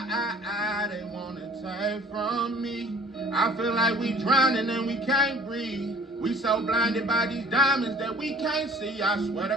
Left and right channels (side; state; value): both; normal; correlation 0.51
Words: they wanna take from me? I feel like we drowning and we can't breathe. We so blinded by these diamonds that we can't see. I swear to